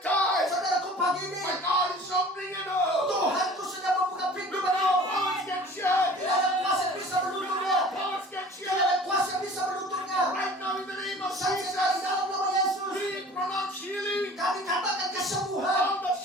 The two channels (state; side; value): normal; both; correlation 0.45